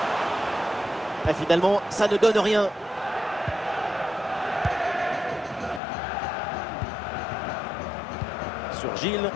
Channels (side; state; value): right; drops out; at 5.8 s